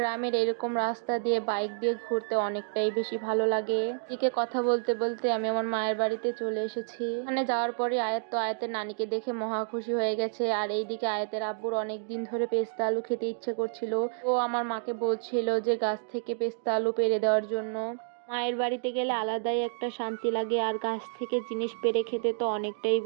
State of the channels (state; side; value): silent; left; digital silence